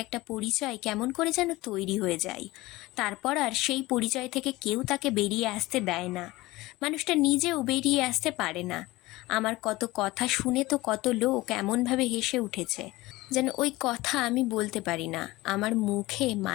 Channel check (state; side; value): quieter; right; 19.7 dB